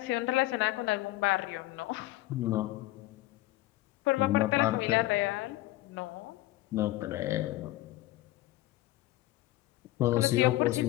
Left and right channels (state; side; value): quieter; right; 17.4 dB